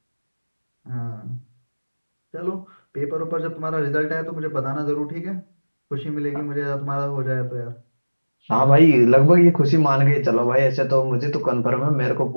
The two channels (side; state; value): both; inverted; correlation -1.00